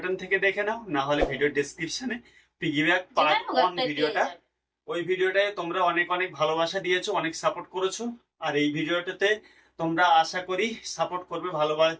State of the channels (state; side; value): identical; both; correlation 1.00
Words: থেকে দেখে নাও, না হলে ভিডিও ডেসক্রিপশনে পিগি ব্যাগ পার্ট 1 ভিডিওটা, ওই ভিডিওটায় তোমরা অনেক অনেক ভালোবাসা দিয়েছো, অনেক সাপোর্ট করেছো। আর এই ভিডিওটাতে তোমরা আশা করি সাপোর্ট করবে,